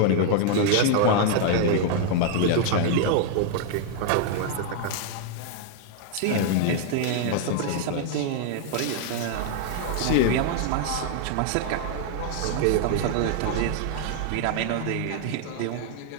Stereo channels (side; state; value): both; different; correlation 0.00